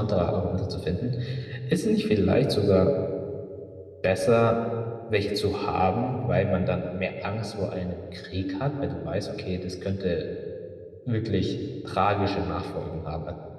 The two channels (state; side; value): identical; both; correlation 1.00